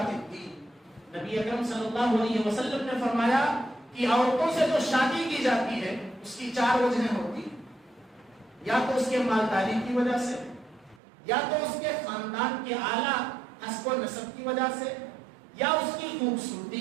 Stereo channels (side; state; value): left; drops out; at 11.0 s